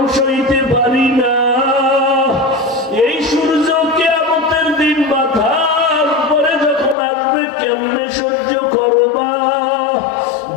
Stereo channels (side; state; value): right; drops out; at 7.0 s